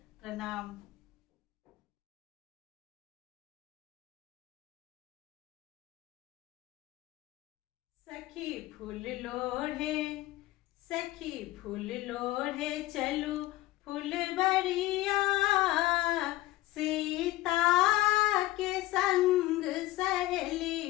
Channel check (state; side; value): quieter; right; 17.3 dB